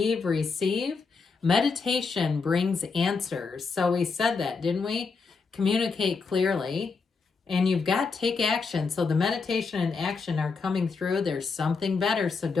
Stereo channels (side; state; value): right; quieter; 4.8 dB